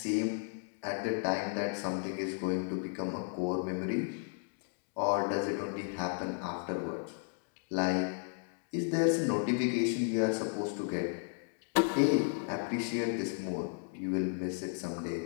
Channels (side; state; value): right; silent; 55 dB below the other